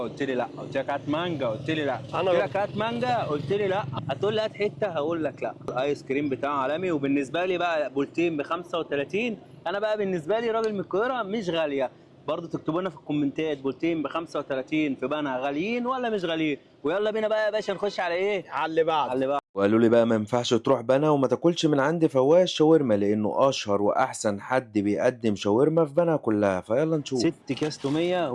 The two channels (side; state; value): both; identical; correlation 1.00